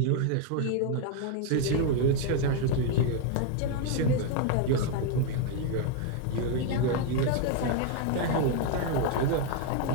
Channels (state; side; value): different; both; correlation 0.01